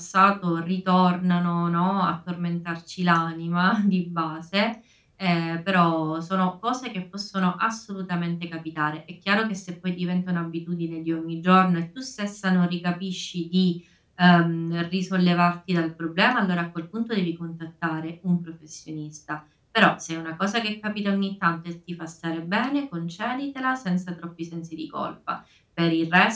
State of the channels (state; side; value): identical; both; correlation 1.00